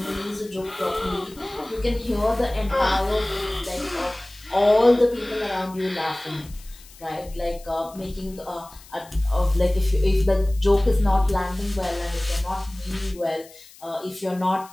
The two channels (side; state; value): left; noise; hiss, 22 dB below the sound